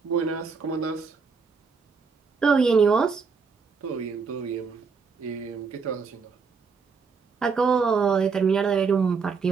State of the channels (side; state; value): left; quieter; 5.3 dB